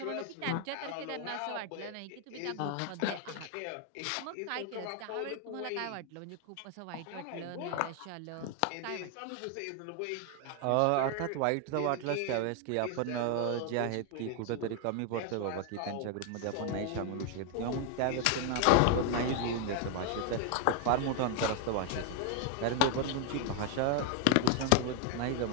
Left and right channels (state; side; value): different; both; correlation 0.01